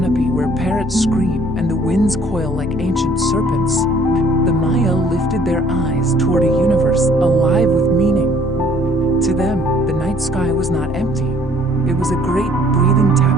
where parrots scream and the winds coil like ancient serpents, the Maya lifted their eyes toward a universe alive with meaning. To them, the night sky was not empty. It was a great breathing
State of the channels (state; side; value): normal; both; correlation 0.58